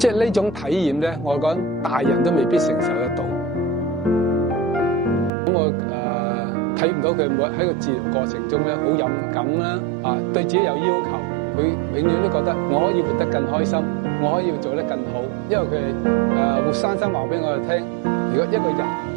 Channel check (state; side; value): drops out; left; at 5.3 s